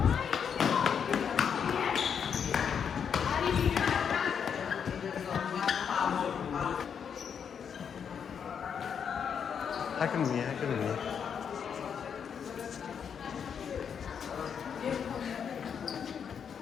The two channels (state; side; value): quieter; right; 7.3 dB